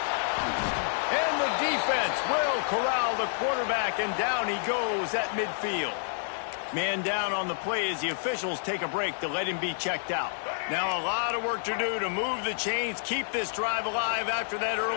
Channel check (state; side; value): silent; right; digital silence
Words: And the defense will corral the quarterback, and down he goes at midfield. Man down on the play as the officials take a break to let him be checked out. Now a lot of work to do to move the chains, keep this drive alive after that